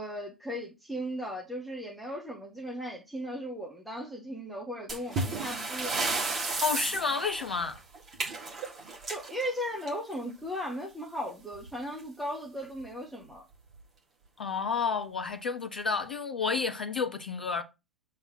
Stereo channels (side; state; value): both; normal; correlation 0.43